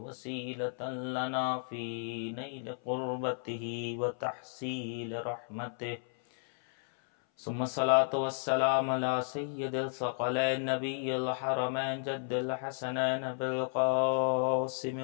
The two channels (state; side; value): silent; right; 56 dB below the other